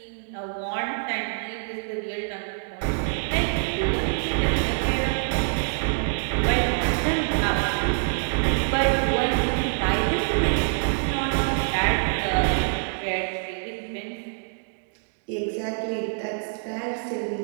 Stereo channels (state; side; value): silent; left; digital silence